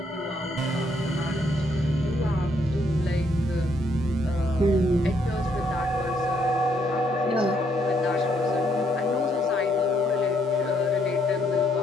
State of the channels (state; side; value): normal; both; correlation 0.72